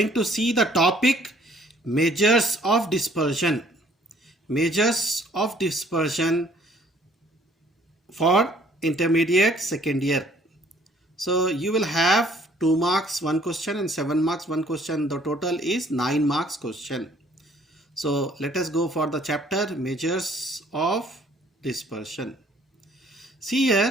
to see the topic measures of dispersion. Measures of dispersion for intermediate second year. So you will have 2 marks one question and 7 marks one question. The total is 9 marks question. So let us go for the chapter measures of dispersion. See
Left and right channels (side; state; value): both; normal; correlation 0.60